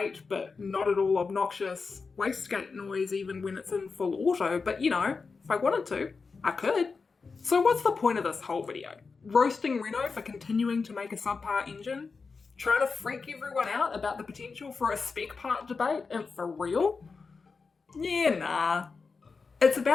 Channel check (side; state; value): right; quieter; 4.7 dB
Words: but not at all obnoxious wastegate noise even when it's in full auto, but you know, if I wanted to, I could. So what's the point of this whole video? Roasting Renault for continuing to make a subpar engine? Trying to freak everyone out about the potential for a spec part debate, and for real? Yeah, nah. It's